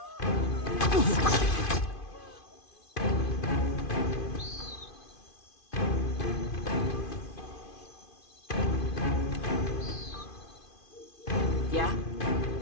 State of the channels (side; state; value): right; late; 2.5 ms